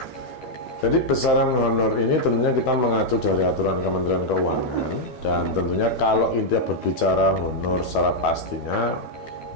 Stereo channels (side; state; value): right; late; 12 ms